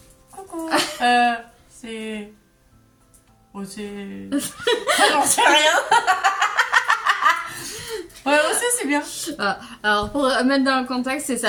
Coucou. C'est... Oh, c'est... J'en sais rien. Ouais, aussi, c'est bien. Alors, pour mettre dans le contexte, c'est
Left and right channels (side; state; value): both; identical; correlation 1.00